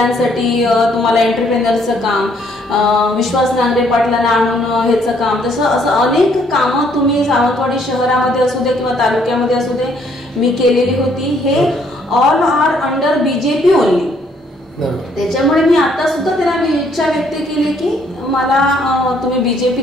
तुम्हाला एंटरप्रेनरचं काम, विश्वास नांगरे पाटलांना आणून ह्याचं काम, तसं असं अनेक कामं तुम्ही सावंतवाडी शहरामध्ये असू दे किंवा तालुक्यामध्ये असू दे मी केलेली होती. हे all are under BJP only. त्याच्यामुळे मी आता सुद्धा त्यांना इच्छा व्यक्त केली की मला तुम्ही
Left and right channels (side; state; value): both; normal; correlation 0.66